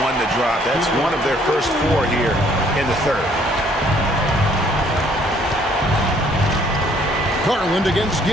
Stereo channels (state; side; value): normal; both; correlation 0.63